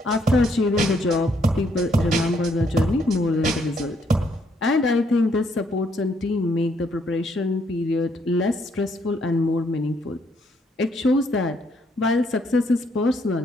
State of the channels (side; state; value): both; normal; correlation 0.71